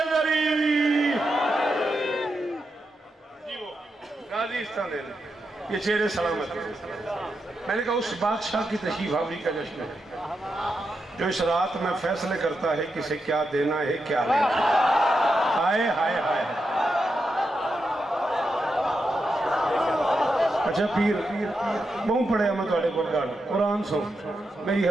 ये चेहरे सलामत। मैंने कहा उस बादशाह की तशरीफ आवरी का जश्न है जो इस रात में फैसले करता है किसे क्या देना है क्या लेना। हाय हाय हाय। अच्छा पीर बहुत पढ़िया मैं थोड़े को कुरान सुन मेरी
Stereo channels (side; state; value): both; normal; correlation 0.86